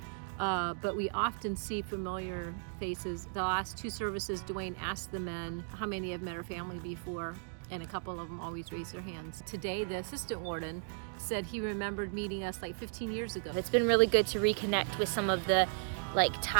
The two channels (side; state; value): left; silent; digital silence